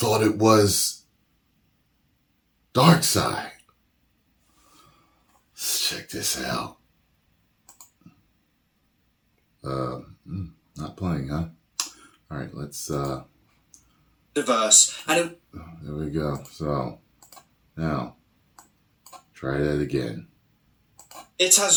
it was Darkseid. Let's check this out. Not playing, huh? All right, let's diverse, and there we go. So now try that again. It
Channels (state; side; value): identical; both; correlation 1.00